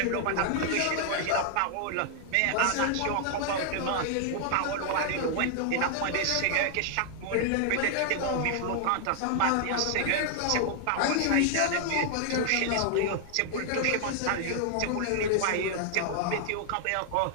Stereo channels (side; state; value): both; different; correlation 0.00